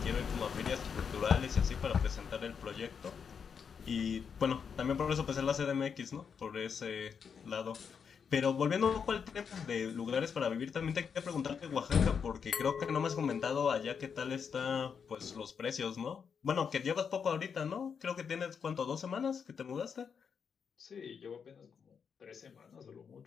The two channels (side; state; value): right; quieter; 6.6 dB